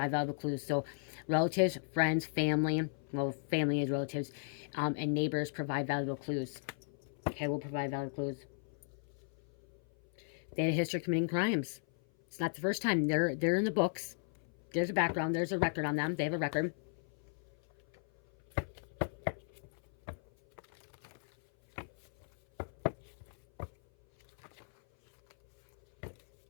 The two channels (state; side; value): silent; right; 54 dB below the other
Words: valuable clues. So relatives, friends, family. Well, family is relatives. And neighbors provide valuable clues. Okay, we'll provide valuable clues. They had a history of committing crimes. It's not the first time. They're in the books. There's a background. There's a record on them. They have a record.